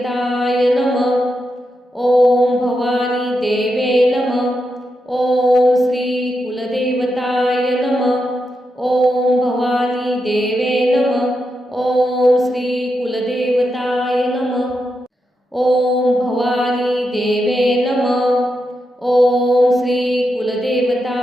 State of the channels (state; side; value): normal; both; correlation 0.86